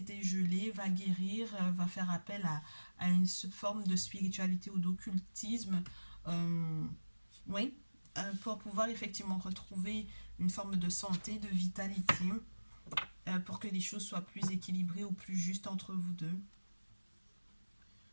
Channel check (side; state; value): both; inverted; correlation -1.00